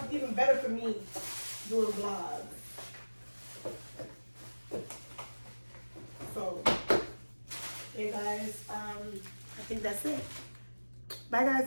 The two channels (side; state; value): both; inverted; correlation -1.00